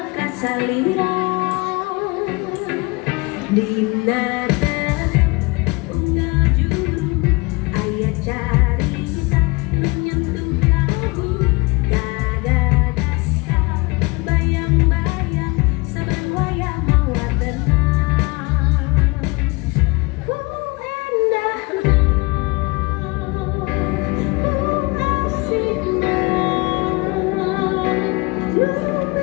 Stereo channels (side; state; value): right; quieter; 26.2 dB